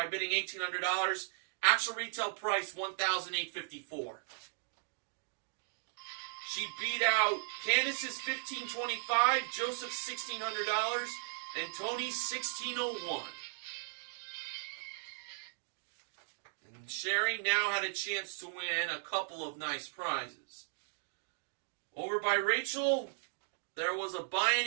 bidding $1,800. Actual retail price $1,854. She beat out Candace's $1,525, Joseph's $1,600, and Tony's $1,601. And Sherry now had a chance to win a couple of nice prizes. Over by Rachel, there was a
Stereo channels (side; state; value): left; silent; digital silence